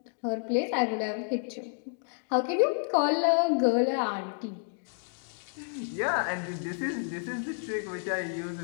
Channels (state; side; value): silent; right; 57 dB below the other